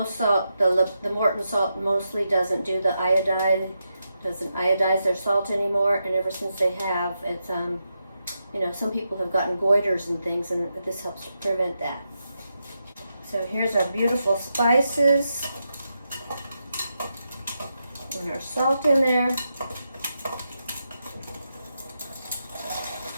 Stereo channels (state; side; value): inverted; both; correlation -0.86